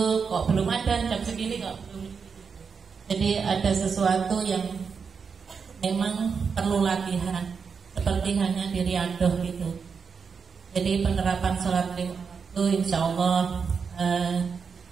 kok belum ada, jam segini kok belum. Jadi ada sesuatu yang memang perlu latihan, seperti hanya di Riyadhah gitu. Jadi penerapan sholat lima waktu insya Allah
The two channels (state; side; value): quieter; left; 5.7 dB